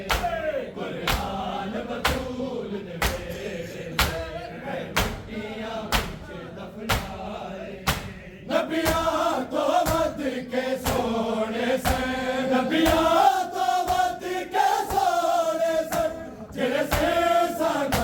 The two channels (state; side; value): identical; both; correlation 1.00